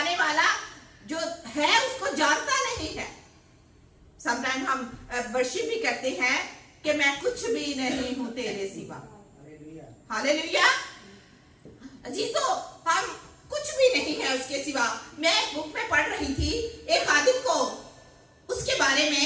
वाला जो है उसको जानता नहीं है। समटाइम हम वर्शिप भी करते हैं कि मैं कुछ भी नहीं हूं तेरे सिवा। हालेलुया। अजीजों, हम कुछ भी नहीं है उसके सिवा। मैं एक बुक में पढ़ रही थी एक आदमी को, उसके बारे में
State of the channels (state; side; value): identical; both; correlation 1.00